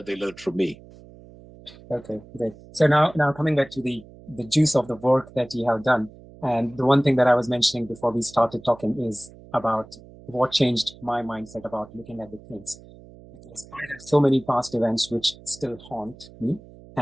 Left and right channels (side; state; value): right; noise; hum, 21 dB below the sound